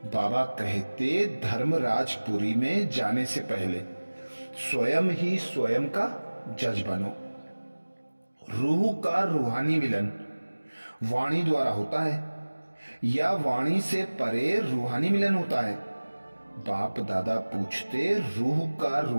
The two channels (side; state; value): both; inverted; correlation -1.00